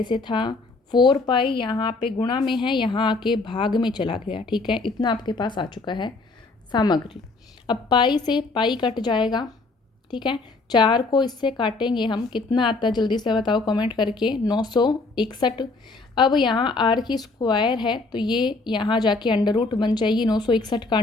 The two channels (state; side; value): quieter; right; 3.6 dB